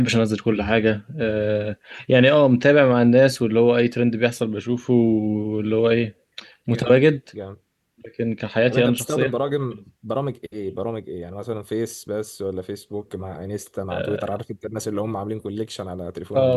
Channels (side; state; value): both; identical; correlation 1.00